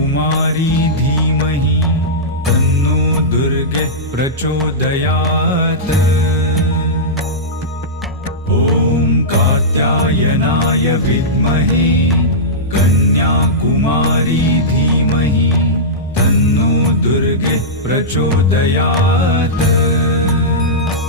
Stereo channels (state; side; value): normal; both; correlation -0.14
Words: धीमहि तन्नो दुर्गे प्रचोदयात्। ॐ कात्यायनाय विद्महे कन्याकुमारी धीमहि तन्नो दुर्गे प्रचोदयात्।